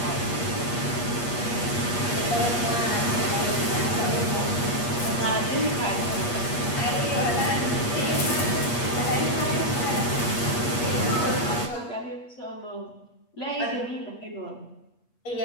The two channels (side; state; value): right; late; 8.4 ms